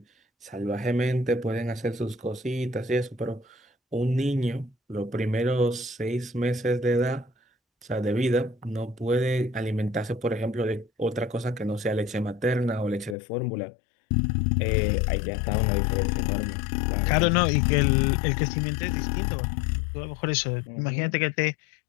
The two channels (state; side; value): drops out; right; at 13.2 s